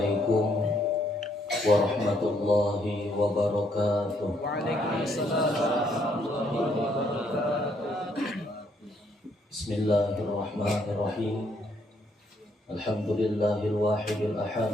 warahmatullahi wabarakatuh. Bismillahirrahmanirrahim. Alhamdulillahil wahidil ahad,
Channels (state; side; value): normal; both; correlation 0.71